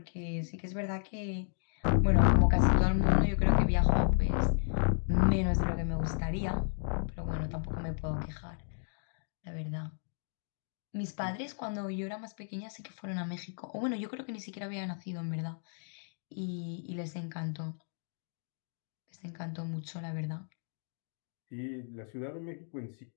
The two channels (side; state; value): right; silent; digital silence